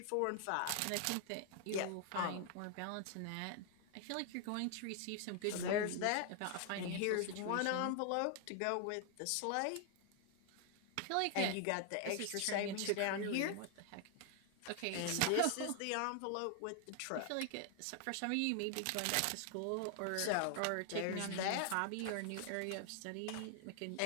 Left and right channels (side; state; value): both; different; correlation 0.00